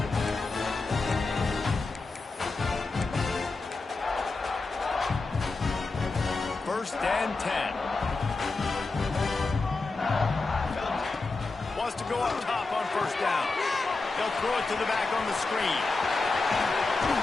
First and 10. Wants to go up top on 1st down. They'll throw it to the back on the screen.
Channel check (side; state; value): right; quieter; 3.7 dB